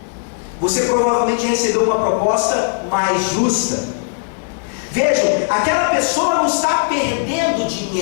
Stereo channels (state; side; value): silent; right; digital silence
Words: Você provavelmente recebeu uma proposta mais justa. Vejam, aquela pessoa não está perdendo